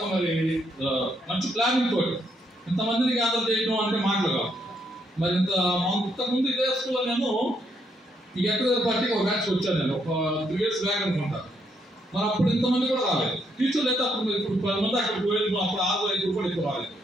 మరి మంచి ప్లానింగ్ తోటి ఇంతమందిని గ్యాదర్ చేయడం అంటే మాటలు కావు. మరి ఇంతకుముందు ఇదే స్కూల్లో నేను ఈ ఎక్కడ పార్టీకి ఒక బ్యాచ్ వచ్చాను. నేను ఒక 3 years బ్యాక్ అనుకుంటాను. మరి అప్పుడు ఇంతమంది కూడా రాలేదు. టీచర్లు అయితే అప్పుడు ఇప్పుడు 10 మంది అక్కడికి పోయేది, అప్పుడు 6-5 కూడా ఎక్కువ రాలేదు.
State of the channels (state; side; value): normal; both; correlation 0.75